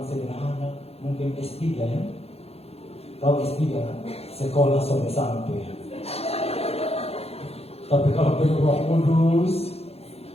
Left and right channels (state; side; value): late; right; 0.29 ms